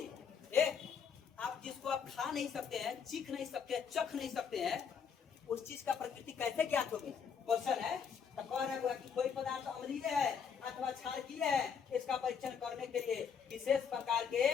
आप जिसको आप खा नहीं सकते हैं, चीख नहीं सकते, चख नहीं सकते हैं, उस चीज का प्रकृति कैसे ज्ञात होगी? क्वेश्चन है। तो कह रहा है कि कोई पदार्थ अम्लीय है अथवा क्षारकीय है, इसका परीक्षण करने के लिए विशेष प्रकार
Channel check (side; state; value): right; quieter; 6.8 dB